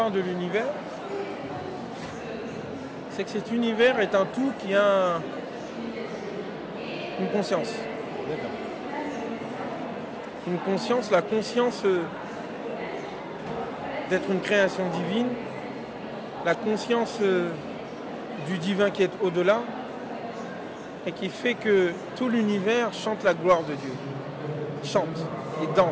de l'univers, c'est que cet univers est un tout qui a une conscience. Une conscience, la conscience d'être une création divine, la conscience du divin qui est au-delà, et qui fait que tout l'univers chante la gloire de Dieu. Chante, ils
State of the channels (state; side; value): identical; both; correlation 1.00